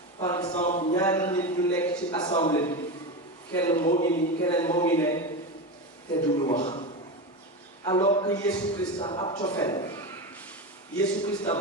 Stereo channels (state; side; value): normal; both; correlation 0.19